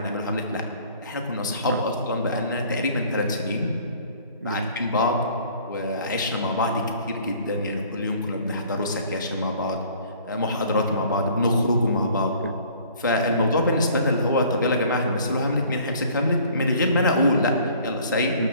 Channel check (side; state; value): both; inverted; correlation -0.53